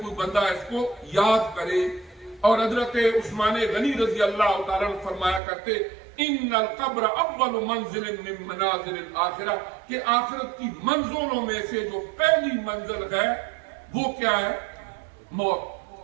بندہ اس کو یاد کرے۔ اور حضرت عثمان غنی رضی اللہ تعالیٰ عنہ فرمایا کرتے ان القبر اول منزل من منازل الاخرہ، کہ آخرت کی منزلوں میں سے جو پہلی منزل ہے وہ کیا ہے؟ موت۔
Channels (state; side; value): drops out; left; at 5.4 s